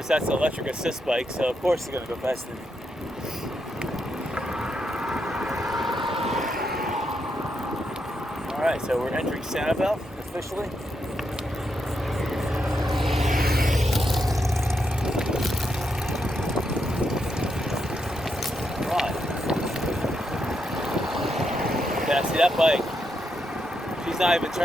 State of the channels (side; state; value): both; normal; correlation 0.82